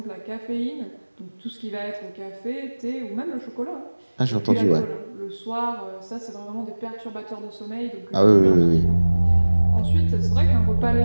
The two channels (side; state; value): both; inverted; correlation -1.00